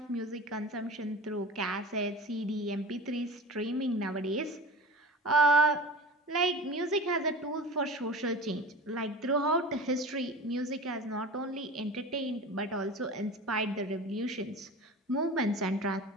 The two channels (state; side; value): normal; both; correlation 0.34